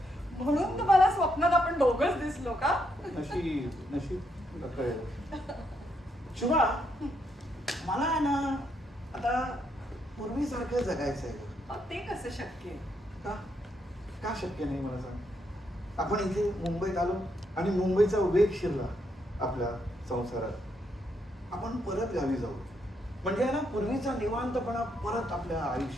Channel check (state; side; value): normal; both; correlation 0.77